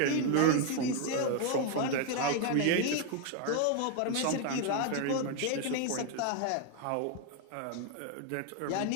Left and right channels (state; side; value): different; both; correlation 0.01